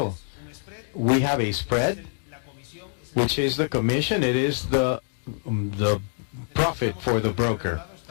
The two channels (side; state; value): right; silent; digital silence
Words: We have a spread, which is the commission. It is the profit for the broker.